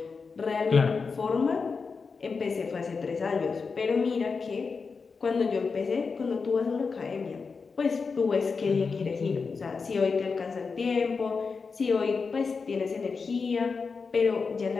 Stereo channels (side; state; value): right; quieter; 4.9 dB